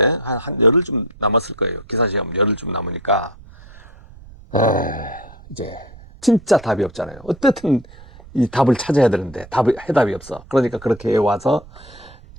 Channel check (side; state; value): right; noise; rumble, 21 dB below the sound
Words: 열흘 좀 남았을 거예요. 기사시험 열흘 좀 남으니까 이제 진짜 답이 없잖아요. 어떻든 이 답을 찾아야 되는데 해답이 없어. 그러니까 그렇게 와서